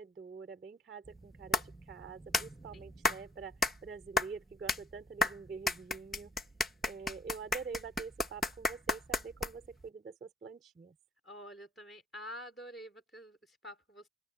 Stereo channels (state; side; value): normal; both; correlation 0.52